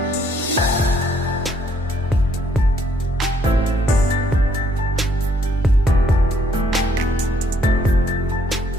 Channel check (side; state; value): both; normal; correlation 0.68